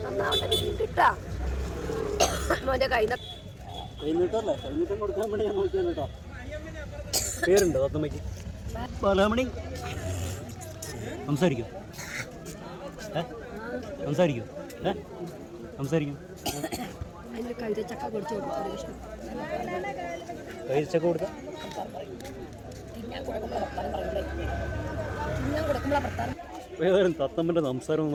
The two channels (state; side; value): identical; both; correlation 1.00